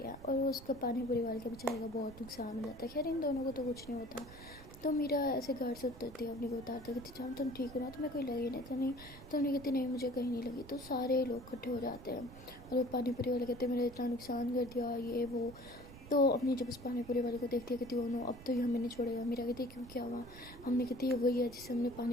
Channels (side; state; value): right; noise; rumble, 16 dB below the sound